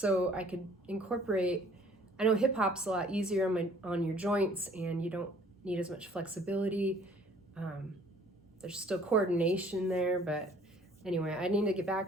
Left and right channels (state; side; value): normal; both; correlation 0.55